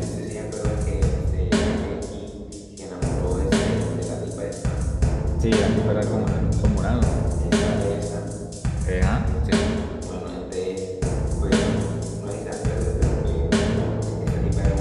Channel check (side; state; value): both; identical; correlation 1.00